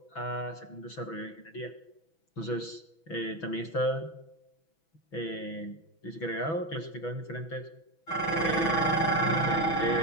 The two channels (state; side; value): late; right; 6.1 ms